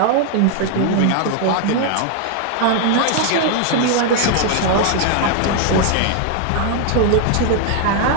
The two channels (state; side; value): different; both; correlation 0.00